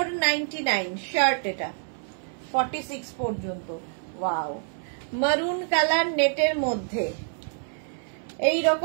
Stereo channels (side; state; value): left; silent; 60 dB below the other